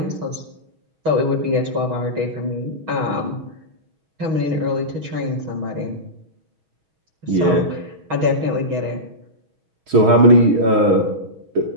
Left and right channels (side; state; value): left; late; 6.3 ms